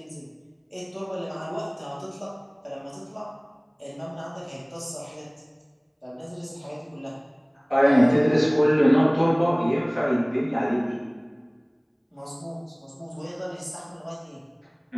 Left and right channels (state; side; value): identical; both; correlation 1.00